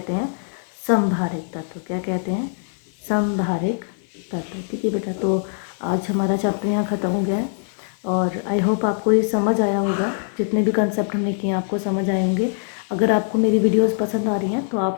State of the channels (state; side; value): silent; right; digital silence